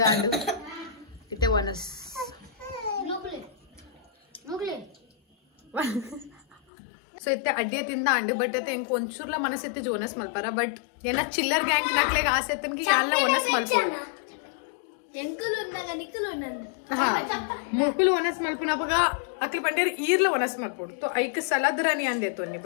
ಅಂಡು ಇತ್ತೆ ಒನಸ್ ಸೊ ಇತ್ತೆ ಅಡ್ಡಿಯ ತಿಂದ ಅಂಡು ಬಟ್ ಅತ್ತೆ ಇಂಕ ಒಂಚೂರ್ಲ ಮನಸ್ಸಿತ್ತೆ ಜೋನಸ್ ಮಲ್ಪಾರ ಬಟ್ ಏನ ಚಿಲ್ಲರ್ ಗ್ಯಾಂಗ್ ನಾಕ್ಲೆಗ್ ಆಸೆ ಎತ್ತನ್ಗೆ ಎಲ್ಲ ಒನಸ್ ಮಲ್ಪೋಡು मोकुल वनस मल्पुना बघा अकल पंडेर ईरला वनस मल्पोड तो ऐक सलाद रानी आन देतो नि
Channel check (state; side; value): drops out; right; at 6.6 s